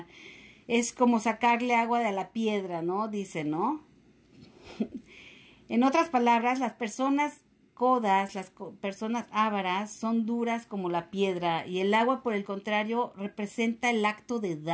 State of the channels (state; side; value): identical; both; correlation 1.00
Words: Es como sacarle agua de la piedra, ¿no? Dice, ¿no? En otras palabras, las personas codas, las personas ávaras, son duras como la piedra y el agua, por el contrario, representa el acto de